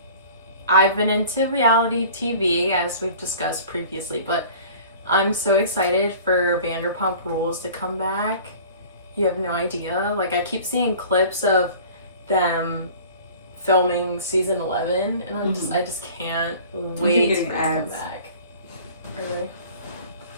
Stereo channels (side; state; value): both; inverted; correlation -0.45